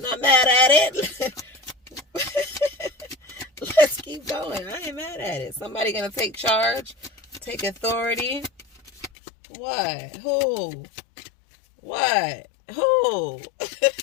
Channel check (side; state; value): right; drops out; at 9.1 s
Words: not mad at it. Let's keep going. I ain't mad at it. Somebody gonna take charge, take authority. What? Who? What? Who?